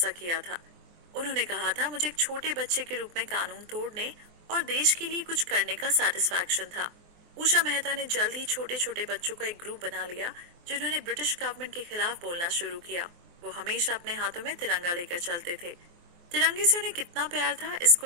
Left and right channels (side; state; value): left; late; 24 ms